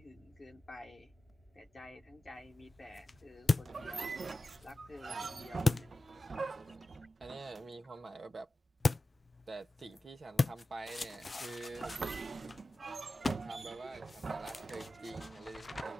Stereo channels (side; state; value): both; normal; correlation 0.94